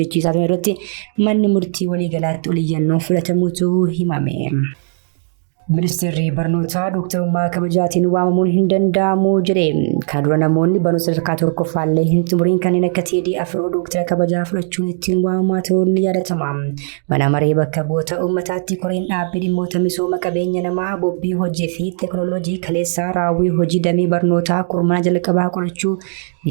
turan irratti manni murtii waliigalaatti oliyyannoo fudhatamuutu himame. Ministeerri barnootaa dooktarummaa kabajaatiin waamamuun hin danda'amu jedhe. Kana dura namoonni barnoota sadarkaa tokkoffaallee hin xumuriin kanneen akka TDF dooktara kabajaa fudhachuun ittiin waamamaa ta'uun ni yaadatama. Mana maree bakka bu'oota uummataatti koreen dhaabbii dhimmoota misooma qabeenya namaa bobbii hojii fi teekinooloojii kaleessaa raawwii hojii damee barnootaa kurmaana jalqabaa qorachuu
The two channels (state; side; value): silent; left; digital silence